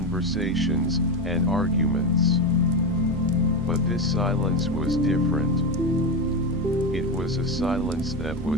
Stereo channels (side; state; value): both; normal; correlation 0.15